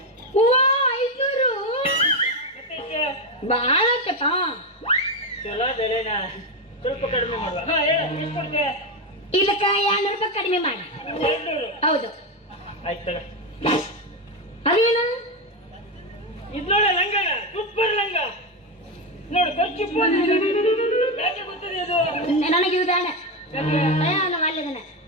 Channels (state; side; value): normal; both; correlation 0.10